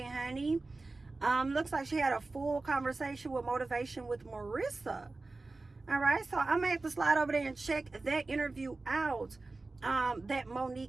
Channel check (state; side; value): quieter; left; 3.4 dB